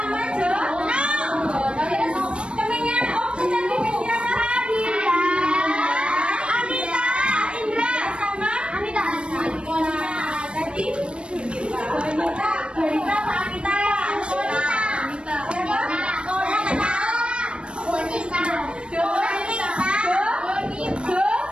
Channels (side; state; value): left; late; 0.057 ms